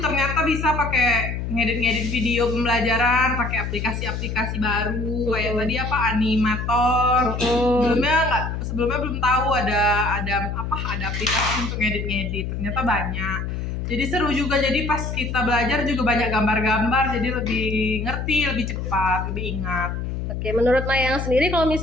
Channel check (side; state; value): left; noise; hum, 4 dB below the sound